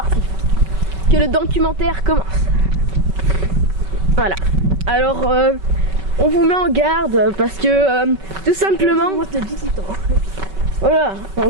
Que le documentaire commence. Voilà. Alors, on vous met en garde parce que tout simplement. Moi, c'est 18 ans. Voilà, on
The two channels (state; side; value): late; left; 5.3 ms